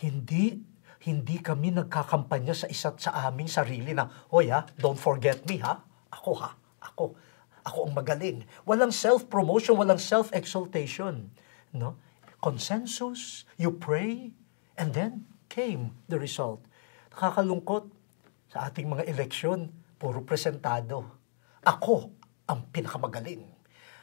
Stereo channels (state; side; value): silent; right; digital silence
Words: kami nagkakampanya sa isa't sa aming sarili na, hoy don't forget me ako ang magaling. Walang self-promotion, walang self-exaltation. No? Consensus, you pray, and then came the result. Nakakalungkot sa ating mga eleksyon, puro presentado. Ako ang pinakamagaling.